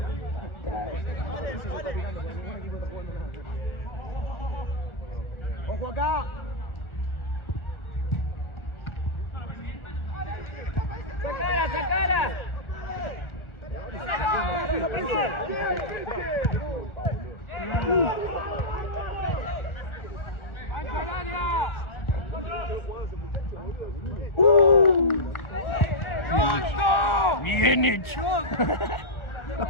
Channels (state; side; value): late; right; 1.4 ms